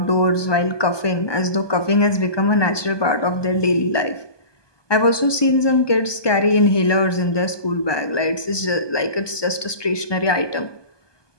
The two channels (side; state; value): right; late; 1.2 ms